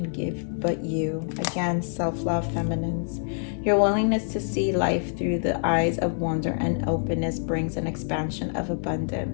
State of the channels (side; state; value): right; silent; digital silence